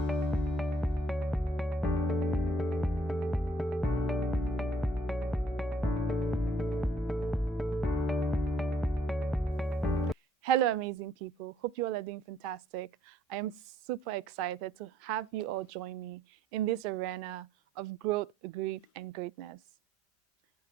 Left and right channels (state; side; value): normal; both; correlation 0.64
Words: Hello, amazing people. Hope you all are doing fantastic. I am super excited to have you all join me in this arena of growth, greed, and greatness.